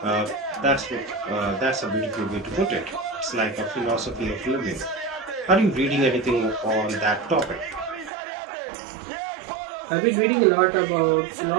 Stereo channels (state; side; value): drops out; left; at 8.1 s